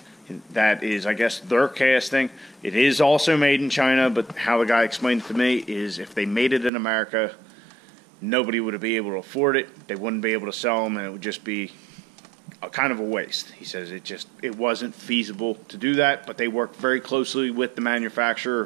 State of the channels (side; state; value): left; drops out; at 6.7 s